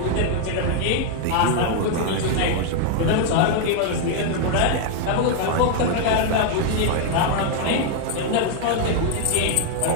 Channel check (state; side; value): different; both; correlation 0.00